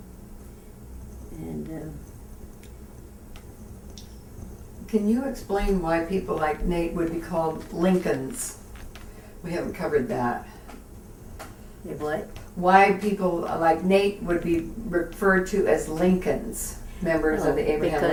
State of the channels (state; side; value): identical; both; correlation 1.00